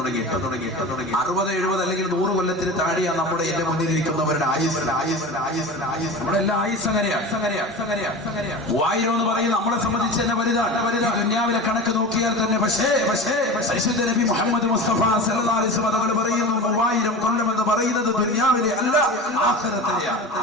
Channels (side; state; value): both; normal; correlation 0.31